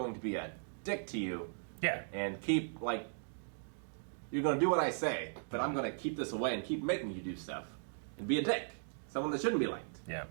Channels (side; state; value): left; silent; digital silence